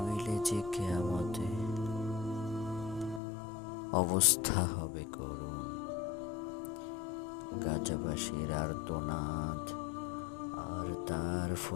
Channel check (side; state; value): right; drops out; at 3.2 s